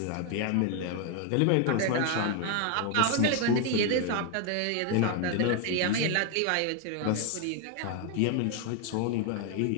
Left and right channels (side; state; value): both; different; correlation 0.01